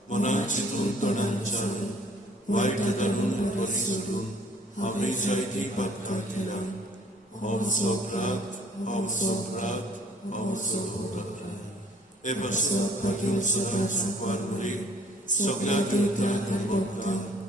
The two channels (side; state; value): both; normal; correlation 0.58